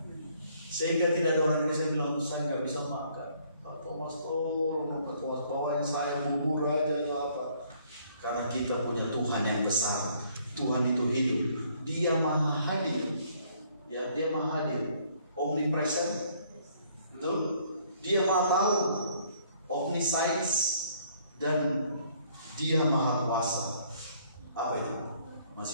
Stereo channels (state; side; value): inverted; both; correlation -0.63